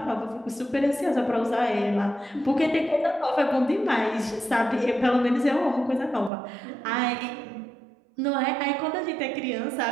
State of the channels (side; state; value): left; drops out; at 6.3 s